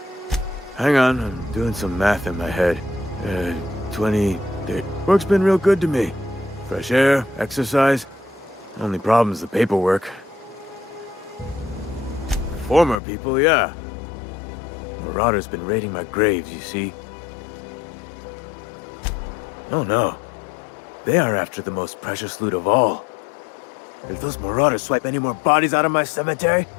Hang on, I'm doing some math in my head. 20... Work's been real good to me. Fresh air, exercise. Only problem's the paperwork. Former people, yeah. Marauders been raiding my graves, you see. Oh no. They are after the most precious loot of all. If those marauders swipe any more bodies out of my cemetery...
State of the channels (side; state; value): right; drops out; at 13.0 s